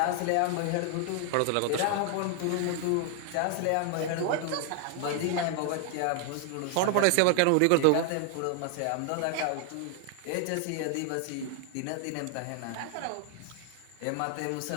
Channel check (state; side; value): different; both; correlation 0.00